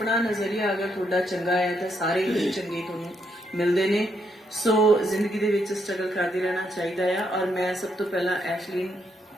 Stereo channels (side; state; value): both; normal; correlation 0.77